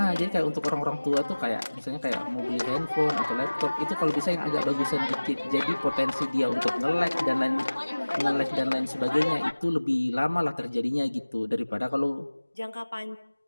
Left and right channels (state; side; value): inverted; both; correlation -1.00